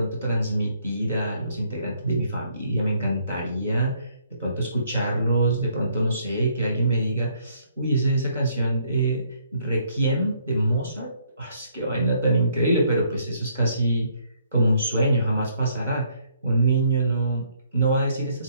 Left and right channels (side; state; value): both; inverted; correlation -0.67